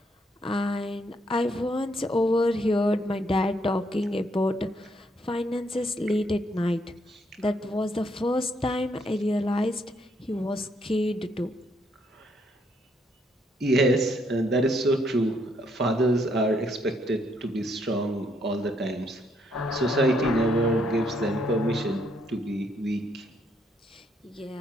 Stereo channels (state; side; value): normal; both; correlation 0.72